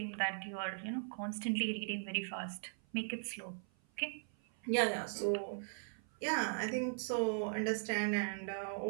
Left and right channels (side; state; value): left; silent; 52 dB below the other